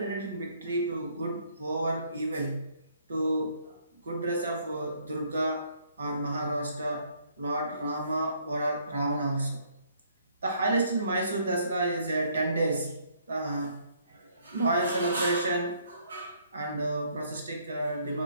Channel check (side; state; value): both; inverted; correlation -0.66